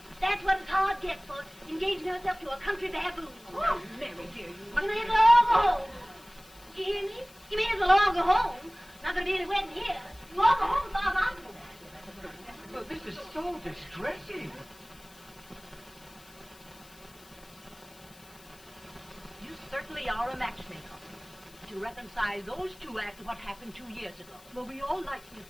That's what his heart gets for engaging herself to a country baboon. Oh, Mary, dear, you You may as well all go home. You hear me? You may as well all go home. Not gonna be any wedding here. You all go home as far as I'm concerned. Well, this is so distressing. You certainly are a matchmaker. To reconcile those two after what happened 2 years ago. Well, we all like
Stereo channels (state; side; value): noise; left; hiss, 23 dB below the sound